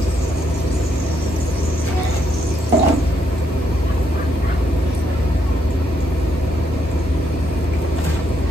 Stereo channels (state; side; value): normal; both; correlation 0.76